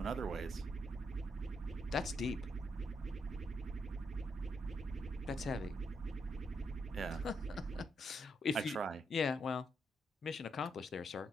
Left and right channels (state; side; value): normal; both; correlation 0.79